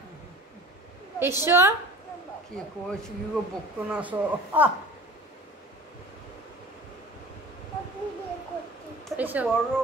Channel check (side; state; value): both; normal; correlation 0.41